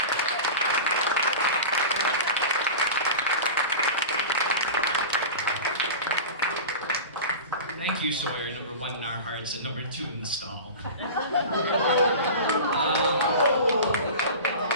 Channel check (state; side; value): inverted; both; correlation -0.32